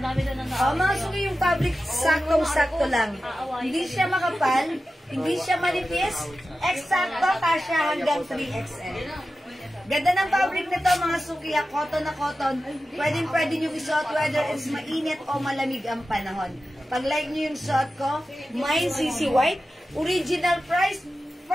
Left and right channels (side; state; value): both; normal; correlation 0.93